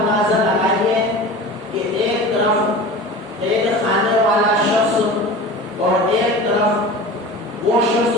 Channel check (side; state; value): both; normal; correlation 0.35